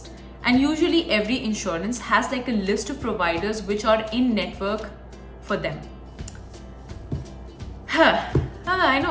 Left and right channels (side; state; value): both; identical; correlation 1.00